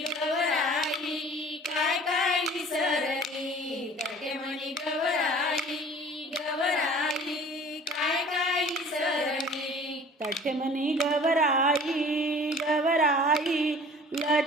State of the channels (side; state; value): both; normal; correlation 0.47